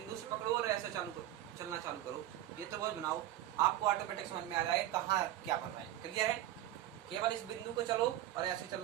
से पकड़ो और ऐसे चलना चालू करो, ये त्रिभुज बनाओ, आपको ऑटोमेटिक समझ में आ जाएगा कहाँ क्या बन रहा है, क्लियर है। केवल इस बिंदु को चलो और ऐसे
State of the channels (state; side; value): quieter; left; 13.4 dB